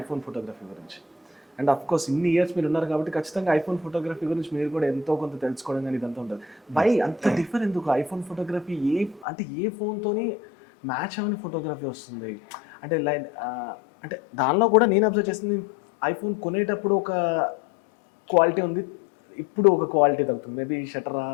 ఫోటోగ్రఫీ గురించి. అండ్ ఆఫ్‌కోర్స్ ఇన్ని ఇయర్స్ మీరున్నారు కాబట్టి ఖచ్చితంగా ఐఫోన్ ఫోటోగ్రఫీ గురించి మీరు కూడా ఎంతో కొంత తెలుసుకోవడం గాని ఇదంతా ఉంటది. వై అంత డిఫర్ ఎందుకు? ఐఫోన్ ఫోటోగ్రఫీ ఏ ఫోన్‌తోని మ్యాచ్ అవ్వని ఫోటోగ్రఫీ వస్తుంది? అంటే అంటే దానిలో కూడా నేను అబ్జర్వ్ చేసింది ఐఫోన్ కొనేటప్పుడు ఒక క్వాలిటీ ఉంది. ఇప్పుడు ఒక క్వాలిటీ తగ్గుతుంది. మేబీ షట్టరా,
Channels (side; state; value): right; drops out; at 9.2 s